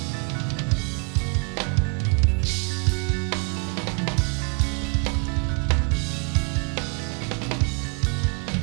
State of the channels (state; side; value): quieter; left; 36.1 dB